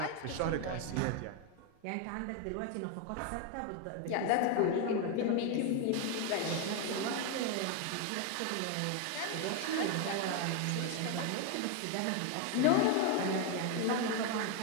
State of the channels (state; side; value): different; both; correlation 0.01